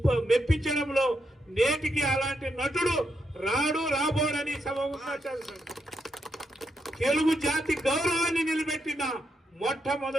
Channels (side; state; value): both; normal; correlation 0.81